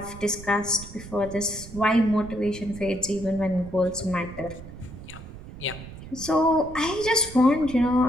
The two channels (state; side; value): noise; right; rumble, 14 dB below the sound